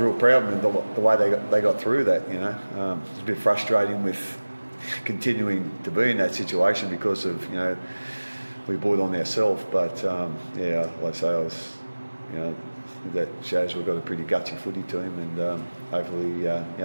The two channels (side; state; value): both; inverted; correlation -1.00